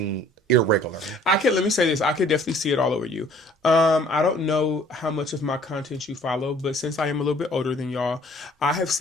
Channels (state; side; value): normal; both; correlation 0.55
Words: irregular. Let me say this. I could definitely see it all over you. I don't know how much of my content you follow, but since I am a little bit older than y'all, I have